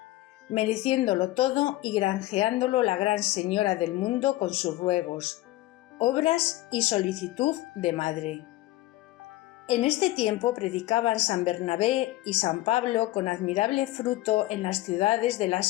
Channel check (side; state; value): right; quieter; 17.2 dB